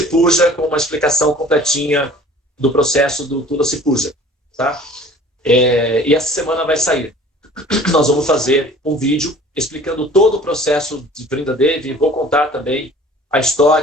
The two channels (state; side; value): normal; both; correlation 0.48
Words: com uma explicação completinha do processo do Tula Cipuja, tá? E essa semana vai sair. Nós vamos fazer um vídeo explicando todo o processo de Brinda Devi. Vou contar também a